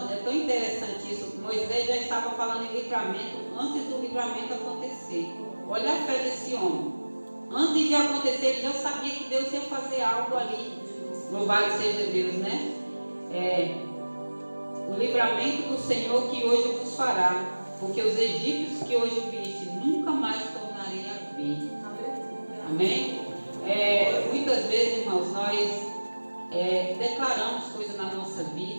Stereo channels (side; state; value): both; inverted; correlation -1.00